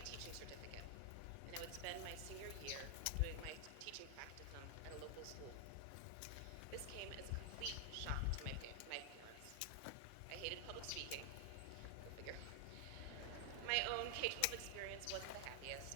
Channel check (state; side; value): different; both; correlation 0.00